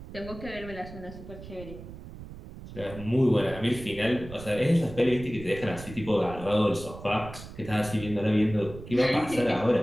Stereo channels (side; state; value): right; noise; rumble, 14 dB below the sound